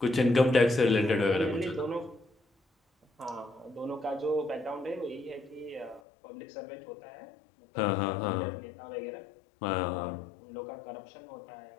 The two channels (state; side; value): drops out; right; at 6.0 s